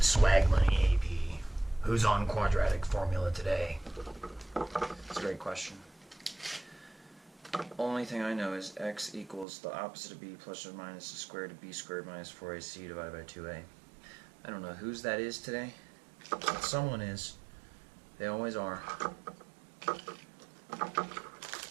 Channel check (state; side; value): drops out; left; at 9.5 s